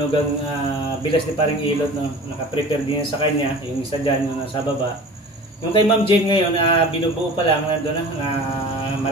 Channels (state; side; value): normal; both; correlation 0.40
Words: bilas ni paring Ilot, no? Naka-prepare din sa kanya, yung isa diyan yung nasa baba. Yung kay Ma'am Jane ngayon, binubuo pa lang nandoon na,